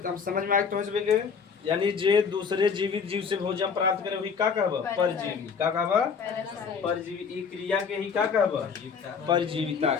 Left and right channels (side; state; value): right; quieter; 6.1 dB